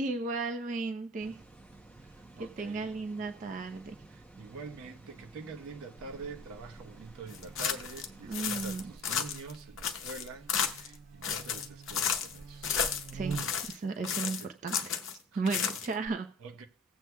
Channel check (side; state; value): both; normal; correlation 0.43